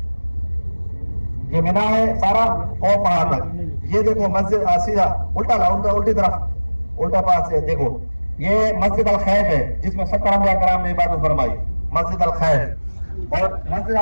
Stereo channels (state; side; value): inverted; both; correlation -1.00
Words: ये मीना है सारा और पहाड़ तक। ये देखो मस्जिद सीधा उल्टा उल्टी तरफ उल्टा पास से देखो, ये मस्जिद अल खैफ है जिसमें 70 अंबिया कराम ने इबादत फरमाई, मस्जिद अल खैफ। और मस्जिद